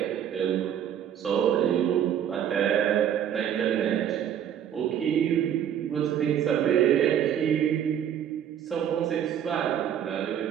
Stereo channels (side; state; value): left; quieter; 9.6 dB